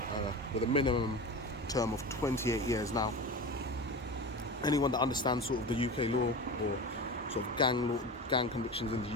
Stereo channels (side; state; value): both; normal; correlation 0.29